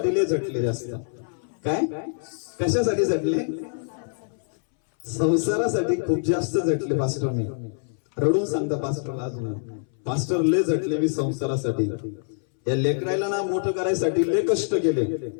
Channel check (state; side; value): silent; right; 62 dB below the other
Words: लय झटले जास्त. काय? कशासाठी झटले? संसारासाठी खूप जास्त झटले पास्टर मी. रडून सांगता पास्टरला अजून, पास्टर लय झटले मी संसारासाठी. या लेकरायला ना मोठं करायसाठी लय कष्ट केले.